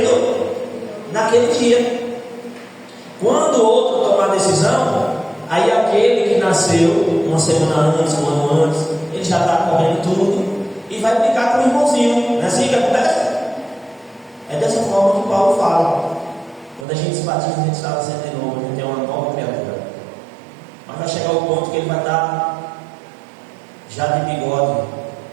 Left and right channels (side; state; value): left; drops out; at 16.9 s